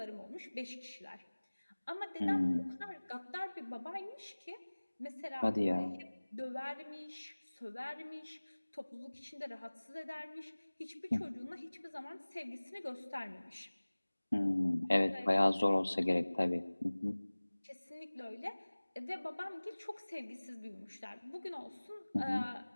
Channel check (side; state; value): both; inverted; correlation -1.00